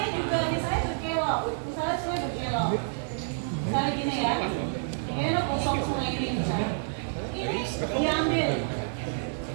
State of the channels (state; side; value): silent; left; digital silence